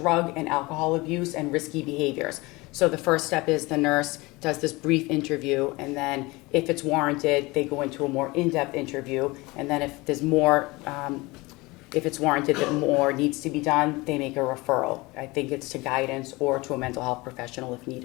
and alcohol abuse and risky behaviors. So the first step is the nurse does this brief interview, and then if it's warranted, they go into a more in-depth interview, and then if there's more, if it's warranted that more needs to be done, they make a referral. I think it's to guidance or to a mental health professional if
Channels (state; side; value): quieter; right; 22.8 dB